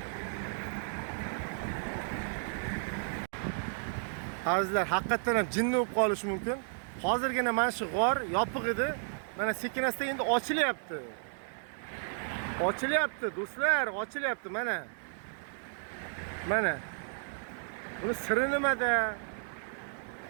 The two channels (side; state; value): left; silent; digital silence